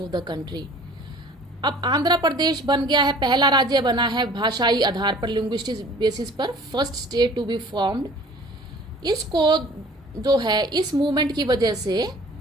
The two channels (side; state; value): both; normal; correlation 0.49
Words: the country. अब आंध्र प्रदेश बन गया है, पहला राज्य बना है भाषाई आधार पर, लिंग्विस्टिक बेसिस पर, first state to be formed. इसको जो है इस मूवमेंट की वजह से